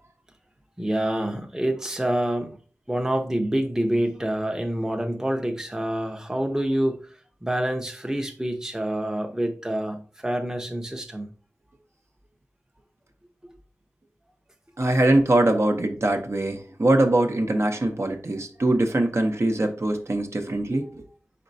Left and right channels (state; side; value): normal; both; correlation 0.93